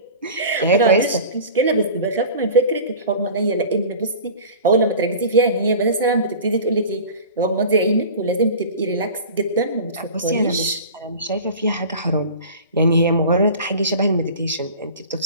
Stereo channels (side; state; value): both; inverted; correlation -0.37